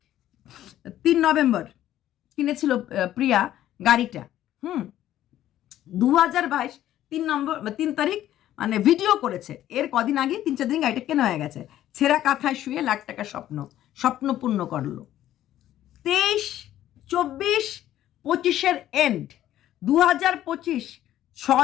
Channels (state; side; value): quieter; right; 12.7 dB